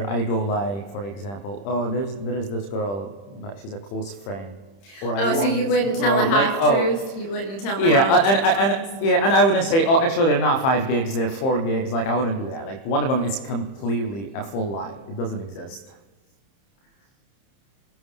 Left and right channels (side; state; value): right; late; 30 ms